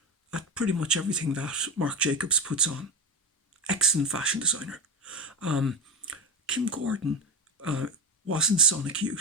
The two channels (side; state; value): both; normal; correlation 0.19